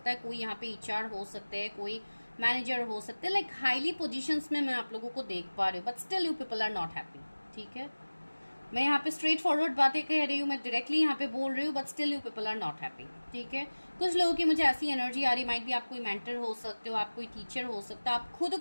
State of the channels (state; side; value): inverted; both; correlation -1.00